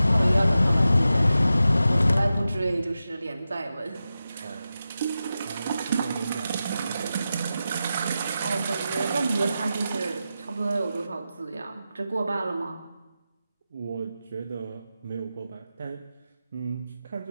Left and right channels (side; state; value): both; inverted; correlation -0.91